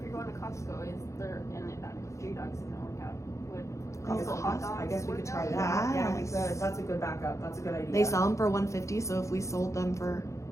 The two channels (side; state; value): right; late; 0.15 ms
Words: you're going to Costco, is there, and J Dogs isn't work out, would I guess Costco hot dogs I guess we work could try out? that. Yeah, we Yes. could. That's a good backup. That's a good idea. they sell them for 150. So if we sold them for